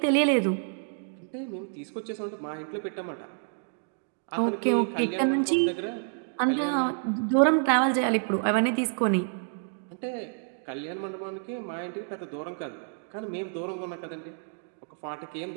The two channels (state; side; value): silent; left; 59 dB below the other